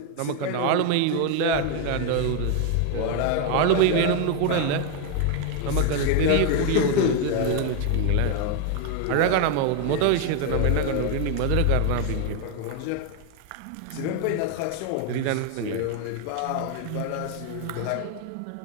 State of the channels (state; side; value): different; both; correlation 0.01